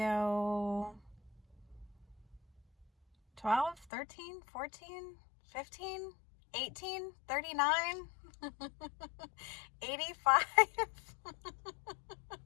12, 13, 14, 15, 18, 39, 85.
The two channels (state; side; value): drops out; right; at 3.9 s